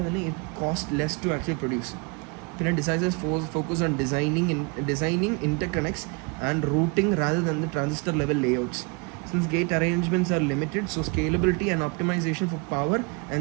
തന്നെ it cost less to actually produce. പിന്നെ designers focus on designing interconnects and routing rather than the transistor level layouts. Since gate arrangements are limited, so scalability and optimization for power and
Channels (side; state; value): left; quieter; 32.2 dB